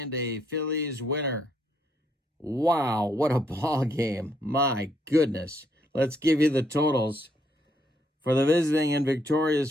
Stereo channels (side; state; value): both; normal; correlation 0.72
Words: a Phillies winner. Wow, what a ball game. My goodness. Let's give you the totals. For the visiting and